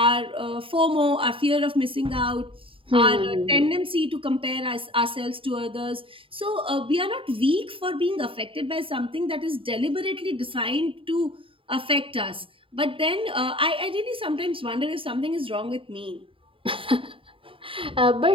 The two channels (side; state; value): left; late; 0.26 ms